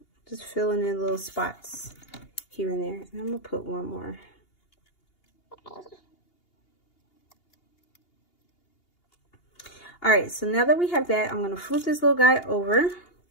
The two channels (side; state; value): right; late; 2.8 ms